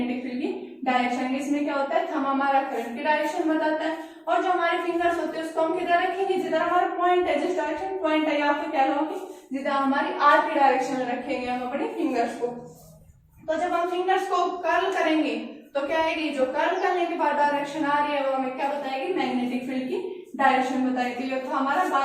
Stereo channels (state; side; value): identical; both; correlation 1.00